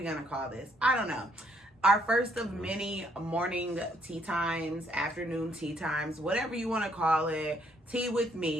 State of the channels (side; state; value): both; normal; correlation 0.68